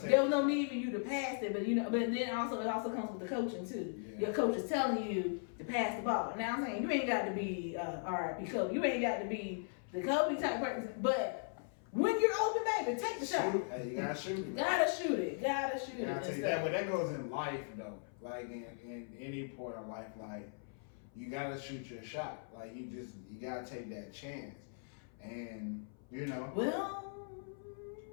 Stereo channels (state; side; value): silent; right; 52 dB below the other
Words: was no need for you to pass it. But, but then it also comes with the coaching, too. Yeah. Your coach is telling you to pass the ball. Now, I'm saying, you ain't got to be RIP Kobe. You ain't got to be the Kobe type person. But when you're open, baby, take the shot. Hey, you got to shoot it. Gotta shoot it. But that goes in life, though. Like in any point of life, like you gotta shoot your shot. Like you gotta take that chance. and you know. Well,